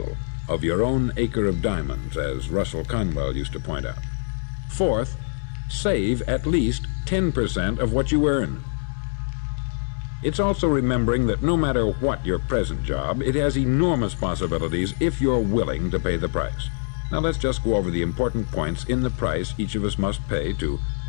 of your own acre of diamonds, as Russell Conwell used to point out. Fourth, save at least 10% of what you earn. It's also remembering that no matter what your present job, it has enormous possibilities if you're willing to pay the price. Now let's just go over the important points in the price each of us must pay to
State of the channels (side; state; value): right; silent; digital silence